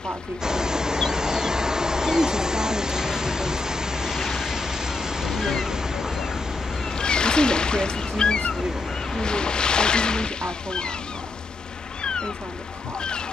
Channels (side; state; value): right; quieter; 3.2 dB